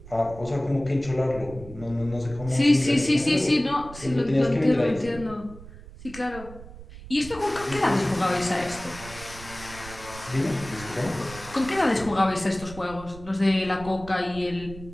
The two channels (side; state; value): right; noise; rumble, 16 dB below the sound